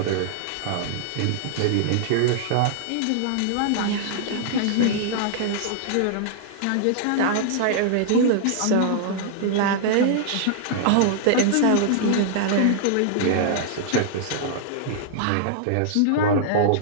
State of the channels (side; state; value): both; different; correlation -0.01